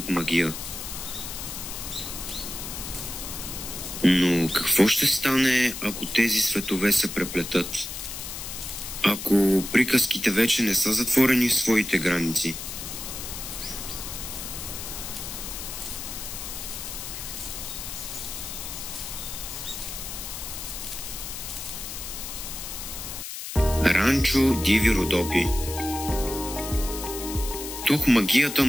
магия. Но какво ще стане, ако тези светове се преплетат? Ако приказките вече не са затворени в своите граници? Ранчо Диви Родопи. Тук магията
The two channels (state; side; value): noise; left; hiss, 8 dB below the sound